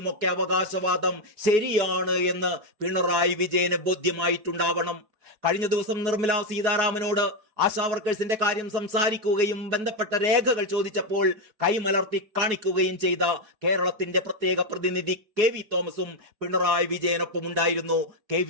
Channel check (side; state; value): left; late; 4.7 ms